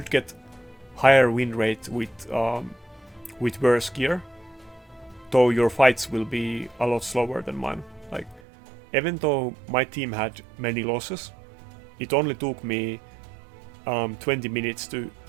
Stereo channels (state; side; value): drops out; left; at 8.4 s